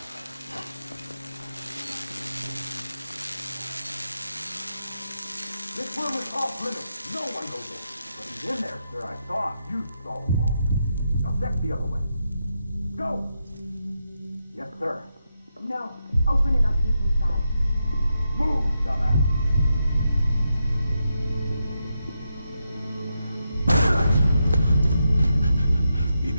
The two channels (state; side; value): inverted; both; correlation -0.85